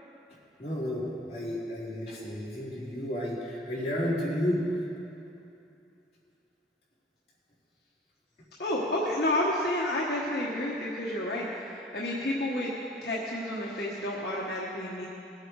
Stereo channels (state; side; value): normal; both; correlation 0.44